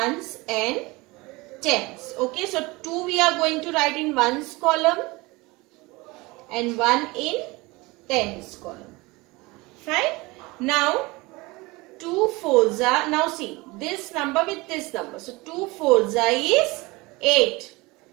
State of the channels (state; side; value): quieter; left; 23.1 dB